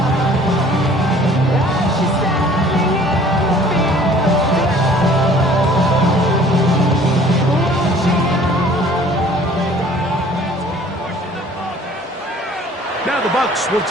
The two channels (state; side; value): normal; both; correlation 0.52